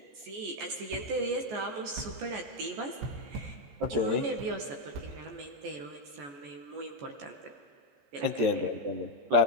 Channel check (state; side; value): late; left; 14 ms